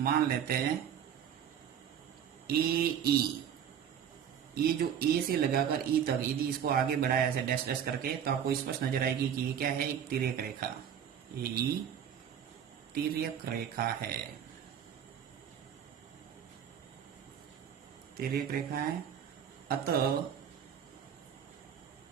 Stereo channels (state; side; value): quieter; left; 8.8 dB